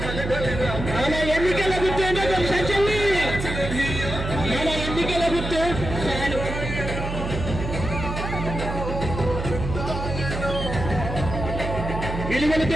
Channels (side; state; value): right; noise; hum, 5 dB below the sound